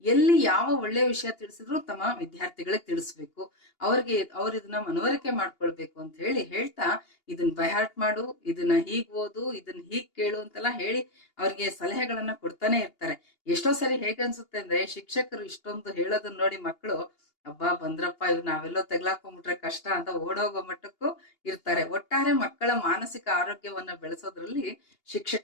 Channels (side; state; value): right; late; 2.8 ms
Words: ಎಲ್ಲಿ ಯಾವ ಒಳ್ಳೆಯ ವಿಷಯ ತಿಳಿಸಿದ್ರು ತಮ್ಮ ವಿದ್ಯಾರ್ಥಿಗಳಿಗೆ ತಿಳಿಸ್ಬೇಕು, ಅವ್ರ ಇದನ್ನ ಮನವರಿಕೆ ಮಾಡ್ಕೊಳ್ಬೇಕು ಅಂತ ಹೇಳ್ತಾ ಇದನ್ನ ಬೈಹಾರ್ಟ್ ಮಾಡು, ಇದನ್ನ ಹೀಗ್ ಓದು, ಇದನ್ನ ಹೀಗ್ ಕೇಳು ಅಂತೆಲ್ಲ ಹೇಳಿ ಅವ್ರಿಗೆ ಸಲಹೆಗಳನ್ನ ಕೊಡ್ತಾನೆ ಇರ್ತಾರೆ. ಎಷ್ಟೋ ಸರಿ ಹೇಗನ್ಸುತ್ತೆ ಅಂದ್ರೆ, ಶಿಕ್ಷಕರು ಇಷ್ಟೊಂದು ಹೇಳೋದನ್ನ ನೋಡಿ ಮಕ್ಕಳು ಅಬ್ಬಾ ಬಂದ್ರಪ್ಪ, ಇವ್ ನಾವೆಲ್ಲೋ ತೆಗ್ಲಾಕೊಂಡ್ಬಿಟ್ರೆ ಕಷ್ಟ ಅಂತ ಓಡೋಗೋ ಮಟ್ಟಕ್ಕೂ ಇರ್ತಾರೆ. ಒಟ್ಟಾರೆ ಮಕ್ಕಳ ಮಾನಸಿಕ ಆರೋಗ್ಯವನ್ನ ಬೆಳೆಸೋದ್ರಲ್ಲಿ